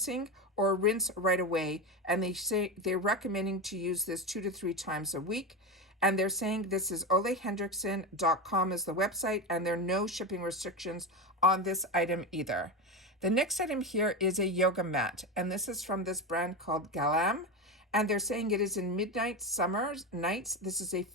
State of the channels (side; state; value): both; normal; correlation 0.18